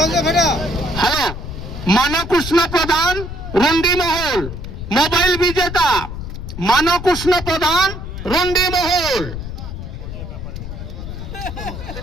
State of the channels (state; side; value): noise; left; rumble, 8 dB below the sound